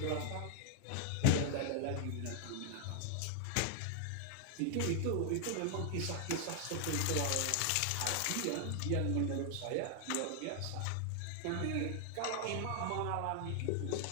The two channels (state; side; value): different; both; correlation 0.00